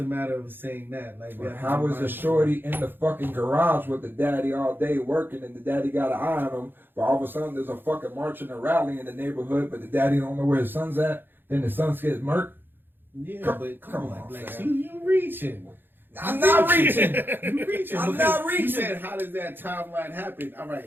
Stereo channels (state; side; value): late; left; 0.099 ms